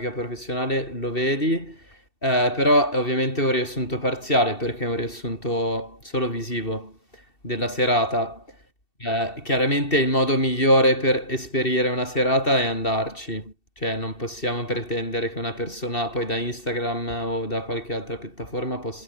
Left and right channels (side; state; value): right; late; 2.7 ms